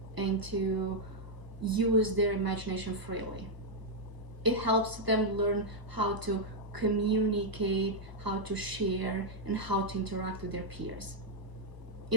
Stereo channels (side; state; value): left; late; 1.0 ms